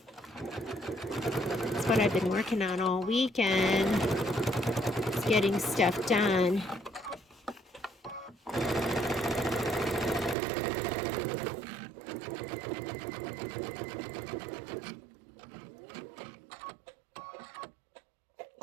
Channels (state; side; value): drops out; left; at 10.4 s